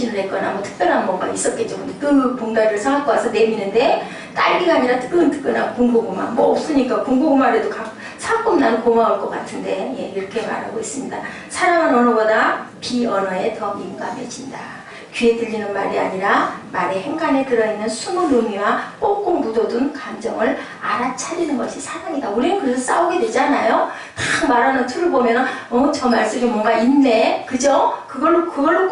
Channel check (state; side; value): identical; both; correlation 1.00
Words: 했거나 뭐 특별한 뭔가 있었겠죠. 근데 그 봉다리를 사갖고 와서 내미는데 딸기가 아니라 뜨끈뜨끈한 군고구마 뭐 없으니까 군고구마라도 사끔 나는 고마울 것 같은데 예, 이렇게 말하고 있습니다. 사랑은 언어보다 비언어에 더 민감해진다. 귀에 들리는 말이 아니라 말의 행간에 들어있는 숨은 의미와 꼭꼭 묻어둔 감정을 알아차리는 것이 사랑이다. 우리는 그래서 싸우게 되잖아요. 딱 말하는 틀을 보면은 저 말씀이 뭔가 있네. 그죠? 그걸로